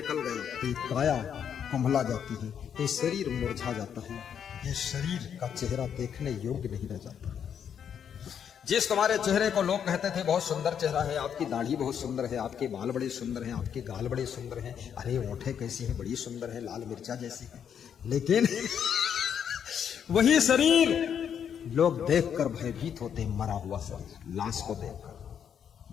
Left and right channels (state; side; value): quieter; right; 8.2 dB